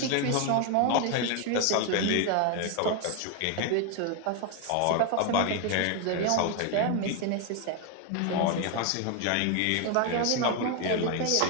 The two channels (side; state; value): both; different; correlation 0.01